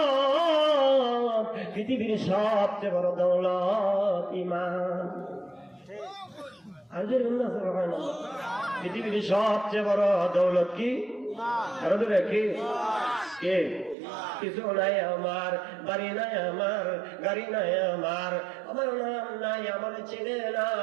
পৃথিবীর সবচেয়ে বড় দৌলত ঈমান। পৃথিবীর সবচেয়ে বড় দৌলত কি? আরো দূরে কি? কিছু নাই আমার, বাড়ি নাই আমার, গাড়ি নাই আমার নাম নাই, আমার চেনে না,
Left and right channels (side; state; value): left; drops out; at 14.0 s